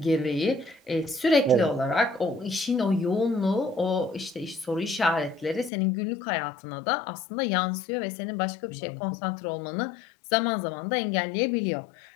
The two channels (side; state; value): right; drops out; at 5.7 s